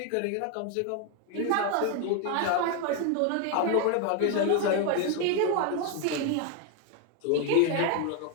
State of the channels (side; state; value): both; different; correlation 0.01